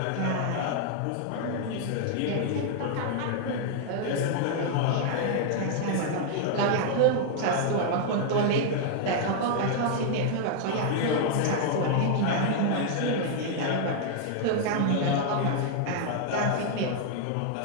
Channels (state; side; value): different; both; correlation 0.00